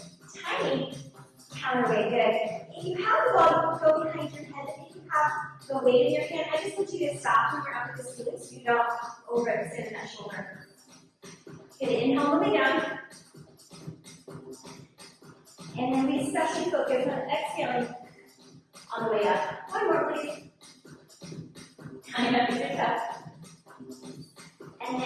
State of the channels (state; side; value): identical; both; correlation 1.00